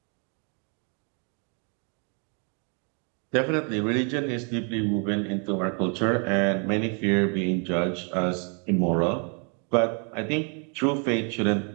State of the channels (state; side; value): quieter; left; 38.1 dB